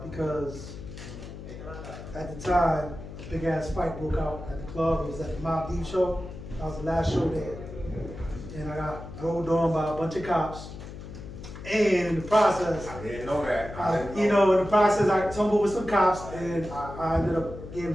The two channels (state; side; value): noise; left; hum, 12 dB below the sound